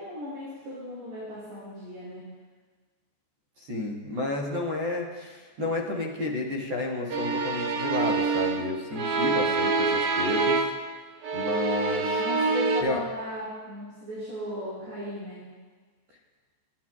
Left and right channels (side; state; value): left; late; 14 ms